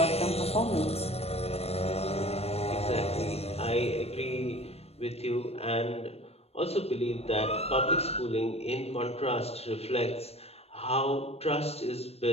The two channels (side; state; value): right; late; 0.29 ms